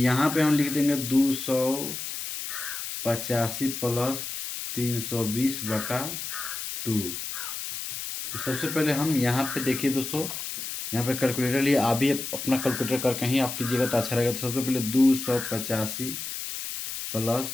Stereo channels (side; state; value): left; noise; hiss, 6 dB below the sound